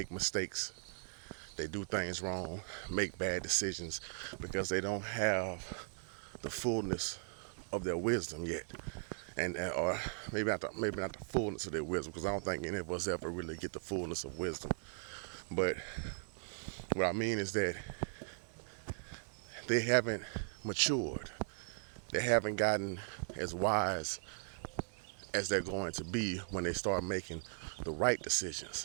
mistakes. They do things wrong, make bad decisions because they don't have the fullness of their wisdom yet. And or maybe not the fullness of their wisdom, because I don't think any of us ever really get the fullness of wisdom. But what I mean is that they haven't matured. They haven't gotten as wise as they're going to be when they start making the right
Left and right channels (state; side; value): silent; left; digital silence